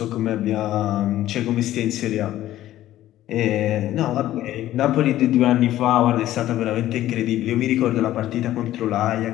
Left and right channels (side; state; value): right; quieter; 13.8 dB